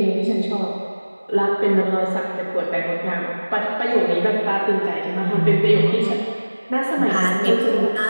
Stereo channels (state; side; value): inverted; both; correlation -1.00